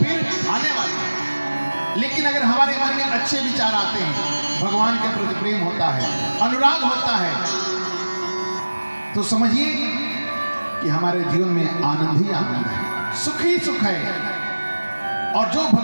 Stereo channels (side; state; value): both; inverted; correlation -1.00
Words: आने वाली है। लेकिन अगर हमारे मन में अच्छे विचार आते हैं, भगवान के प्रति प्रेम होता है, अनुराग होता है, तो समझिए कि हमारे जीवन में आनंद ही आनंद है, सुख ही सुख है। और जो